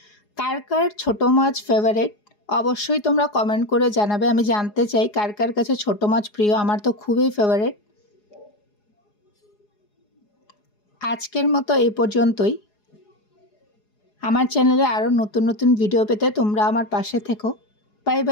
কার কার ছোট মাছ ফেভারিট অবশ্যই তোমরা কমেন্ট করে জানাবে। আমি জানতে চাই কার কার কাছে ছোট মাছ প্রিয়। আমার তো খুবই ফেভারিট। আজকের মতো এই পর্যন্তই। আমার চ্যানেলে আরও নতুন নতুন ভিডিও পেতে তোমরা আমার পাশে থেকো। Bye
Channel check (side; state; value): right; late; 4.8 ms